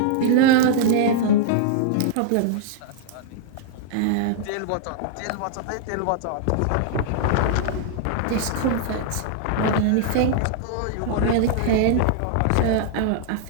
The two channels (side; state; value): both; different; correlation -0.01